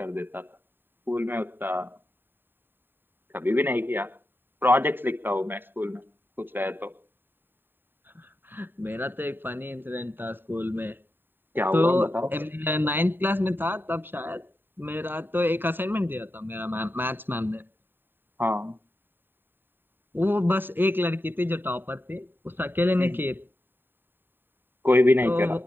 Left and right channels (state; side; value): late; left; 0.096 ms